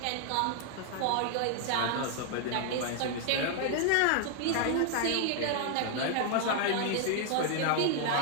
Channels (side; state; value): both; different; correlation 0.00